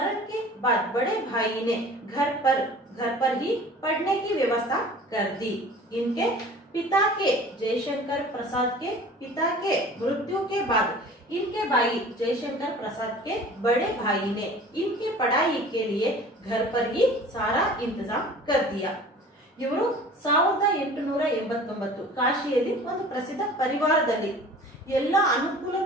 बाद बड़े भाई ने घर पर ही पढ़ने की व्यवस्था कर दी। इनके पिता के जयशंकर प्रसाद के पिता के मृत्यु के बाद इनके भाई जयशंकर प्रसाद के बड़े भाई ने इनकी पढ़ाई के लिए घर पर ही सारा इंतजाम कर दिया। ಇವರು 1889 ಕಾಶಿಯಲ್ಲಿ ಒಂದು ಪ್ರಸಿದ್ಧ ಪರಿವಾರದಲ್ಲಿ ಎಲ್ಲ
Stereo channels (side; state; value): both; normal; correlation 0.44